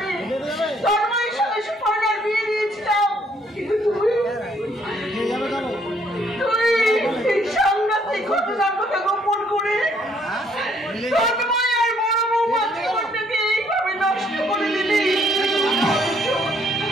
তন্ময়ের সঙ্গে সুপর্ণার বিয়ে দিয়েছিলাম, কিন্তু তুই এই সাংঘাতিক ঘটনার কথা গোপন করে তন্ময় আর বড় বৌমার জীবনটাকে এইভাবে নষ্ট করে দিলি।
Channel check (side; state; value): both; normal; correlation 0.66